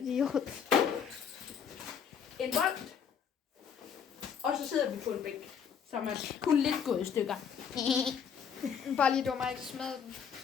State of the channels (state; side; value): quieter; right; 7.3 dB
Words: En bold. Og så sidder vi på en bænk, som er kun lidt gået i stykker. Bare lige dummer, ikke smadre den.